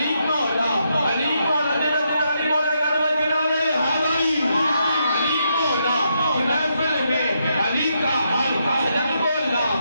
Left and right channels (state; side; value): inverted; both; correlation -0.79